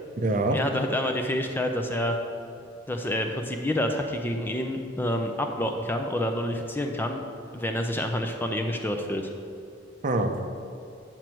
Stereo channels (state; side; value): normal; both; correlation 0.54